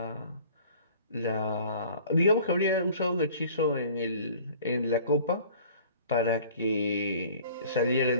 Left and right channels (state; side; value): inverted; both; correlation -0.49